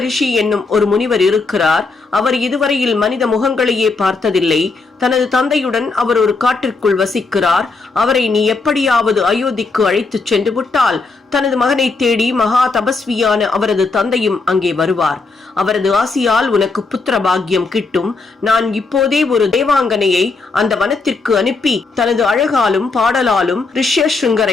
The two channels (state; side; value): quieter; right; 4.0 dB